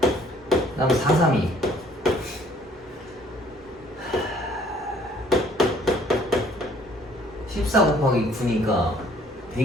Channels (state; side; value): normal; both; correlation 0.59